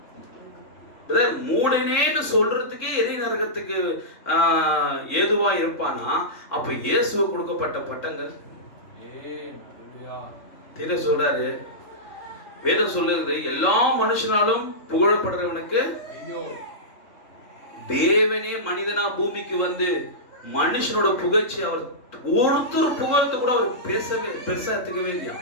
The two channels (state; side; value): late; right; 3.8 ms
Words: மூடனேன்னு சொல்றதுக்கே எரி நரகத்துக்கு ஏதுவா இருப்பானா? அப்ப இயேசுவுக்கு கொடுக்கப்பட்ட பட்டங்கள் தெரிய சொல்றாரு. வேதம் சொல்லுது, எல்லா மனுஷனாலும் புகழப்படுறவனுக்கு தேவனே மனிதனா பூமிக்கு வந்து மனுஷனோட புகழ்ச்சி அவர் ஒருத்தர் புகழ்த்து கூட அவர் பேசவே பெருசா எடுத்துக்கவே இல்லையா.